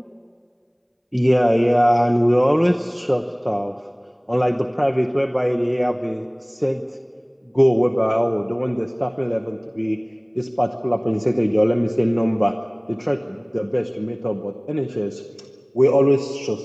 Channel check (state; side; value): identical; both; correlation 1.00